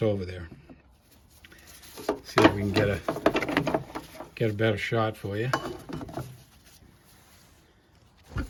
over there. See if we can get a better shot for you.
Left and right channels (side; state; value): both; identical; correlation 1.00